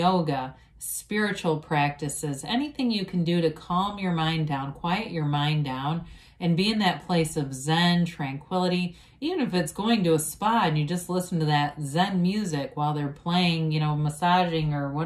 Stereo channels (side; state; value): both; identical; correlation 1.00